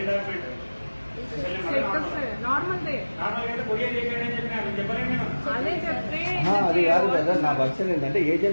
అది కాదు కదా, నా వర్షన్ ఏంటంటే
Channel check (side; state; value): both; inverted; correlation -1.00